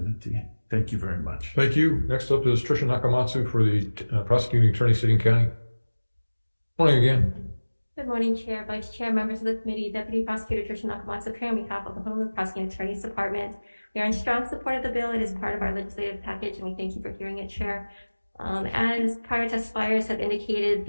Thank you very much. Thank you. Next up is Tricia Nakamatsu for the prosecuting attorney, City and County. Morning again. Good morning, Chair, Vice Chair, members of the committee. Deputy Prosecutor Tricia Nakamatsu appearing on behalf of the Honolulu Prosecuting Attorney's Department. We are in strong support of the bill. It is part of our legislative package, and we thank you for hearing it, Chair. As prior testifiers have indicated,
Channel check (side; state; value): both; inverted; correlation -1.00